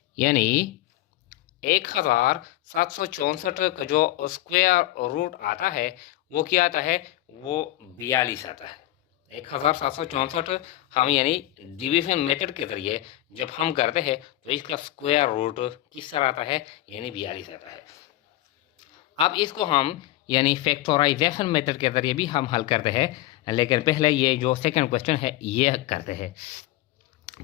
यानी 1764 का जो स्क्वायर रूट आता है वो क्या आता है, वो 42 आता है। 1764 हम यानी डिवीजन मेथड के जरिए जब हम करते हैं तो इसका स्क्वायर रूट किस तरह आता है, यानी 42 आता है। अब इसको हम यानी फैक्टराइजेशन मेथड के जरिए भी हम हल करते हैं, लेकिन पहले ये जो सेकंड क्वेश्चन है ये करते हैं।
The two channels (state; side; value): quieter; right; 15.9 dB